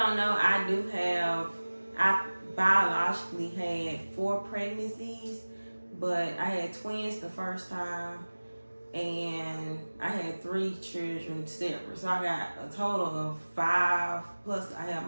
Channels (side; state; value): both; inverted; correlation -1.00